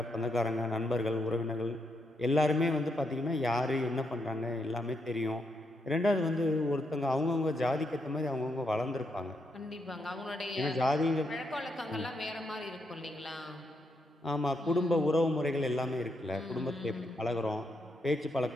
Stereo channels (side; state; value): both; normal; correlation 0.79